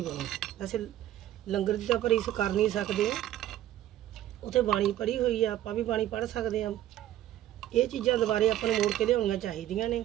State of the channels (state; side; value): quieter; left; 12.9 dB